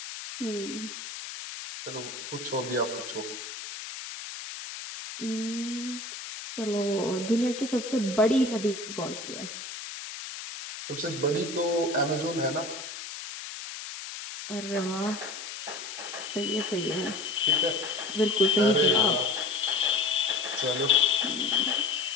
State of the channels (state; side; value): noise; left; hiss, 9 dB below the sound